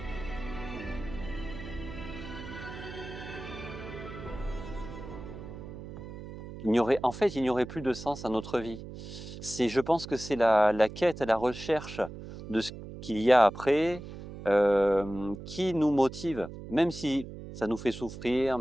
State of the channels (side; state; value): right; noise; hum, 12 dB below the sound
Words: Il n'y aurait plus de sens à notre vie. Je pense que c'est la quête, la recherche de ce qu'il y a après qui nous motive, même si ça nous fait souffrir,